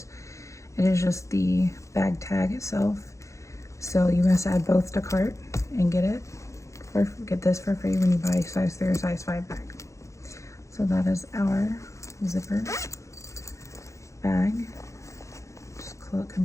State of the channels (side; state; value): right; late; 0.15 ms